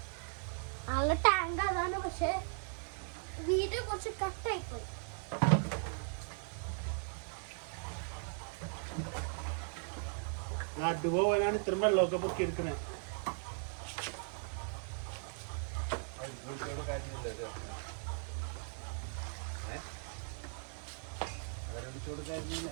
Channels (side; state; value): left; silent; 52 dB below the other